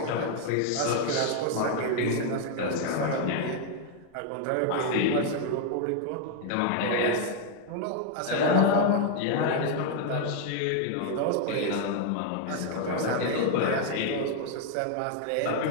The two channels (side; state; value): both; different; correlation 0.00